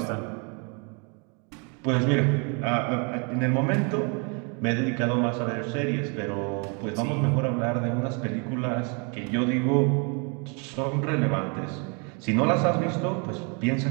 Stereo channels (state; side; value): quieter; left; 34.6 dB